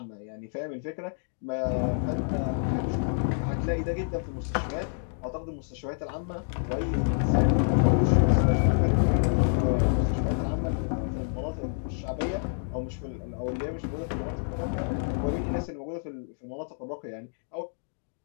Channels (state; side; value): silent; right; digital silence